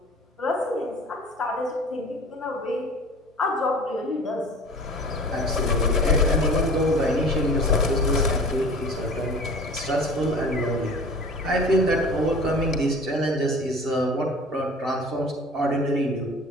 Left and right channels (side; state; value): both; normal; correlation 0.42